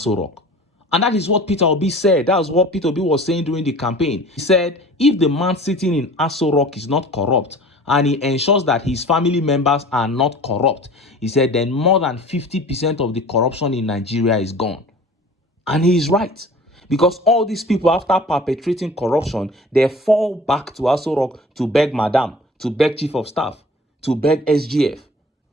Rock. And that is what Peter Obi said. That was what Peter Obi was saying during the campaign. He said, if the man sitting in Aso Rock is not corrupt, and he ensures that his family members are not corrupt, he said, then more than 50% of the corruption in Nigeria is gone. And he is right. Because all these people, after perpetrating corruption, they fall back to Aso Rock to beg Madam, to beg Chief of Staff, to beg SGF,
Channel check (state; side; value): normal; both; correlation 0.44